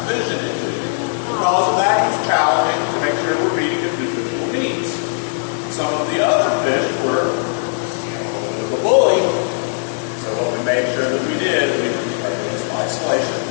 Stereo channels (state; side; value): silent; right; digital silence